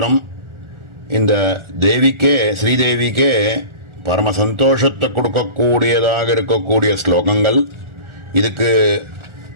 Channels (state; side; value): late; left; 1.4 ms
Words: இந்த தேவிக்கே, ஸ்ரீதேவிக்கே பரம சந்தோஷத்தை கொடுக்கக்கூடியதாக இருக்கக்கூடிய ஸ்லோகங்கள். இதுக்கு